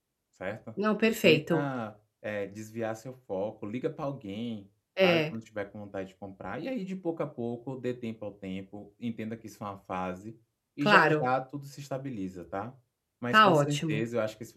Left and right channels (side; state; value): both; identical; correlation 1.00